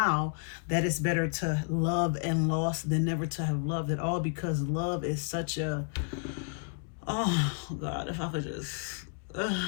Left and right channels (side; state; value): right; silent; 57 dB below the other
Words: that it's better to love and lost than never to have loved at all, because love is such a, oh God, if I could just,